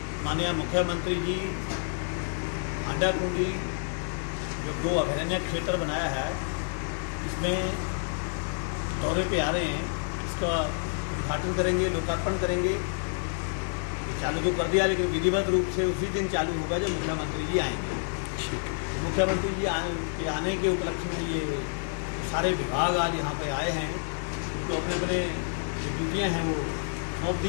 माननीय मुख्यमंत्री जी हांडाखुंडी जो गो अभयारण्य क्षेत्र बनाया है, इसमें दौरे पे आ रहे हैं। इसका उद्घाटन करेंगे, लोकार्पण करेंगे। चालू तो कर दिया, लेकिन विधिवत रूप से उसी दिन चालू होगा जब मुख्यमंत्री जी आएंगे। मुख्यमंत्री जी आने के उपलक्ष्य में ये सारे विभाग आज यहाँ पे आए हैं, तो अपने अपने जो ड्यूटियाँ हैं वो सौंप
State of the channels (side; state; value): right; silent; digital silence